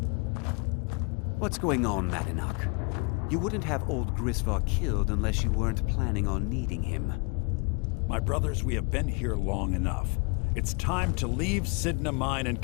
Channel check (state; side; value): quieter; right; 30.9 dB